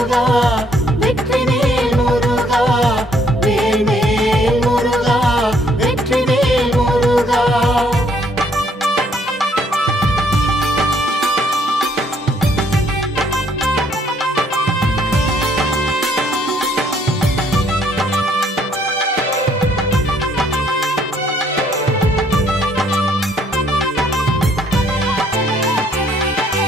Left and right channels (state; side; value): normal; both; correlation 0.66